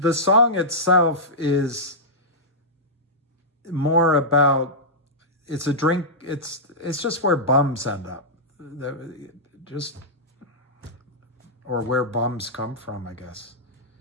song itself is more about, it's a drink, it's just where bums end up. Or where bums come from, I guess.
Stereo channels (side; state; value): both; normal; correlation -0.11